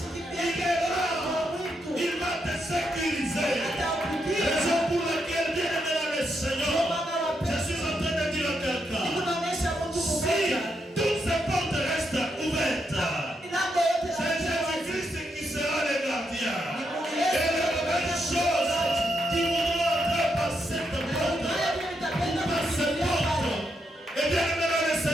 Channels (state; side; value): normal; both; correlation 0.81